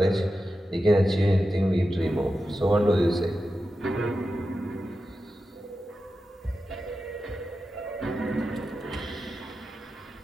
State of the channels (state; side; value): normal; both; correlation 0.91